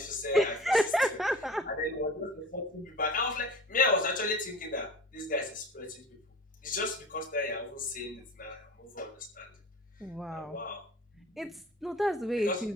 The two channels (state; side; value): normal; both; correlation 0.39